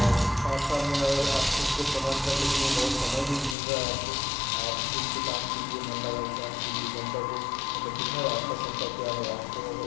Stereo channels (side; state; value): right; drops out; at 3.6 s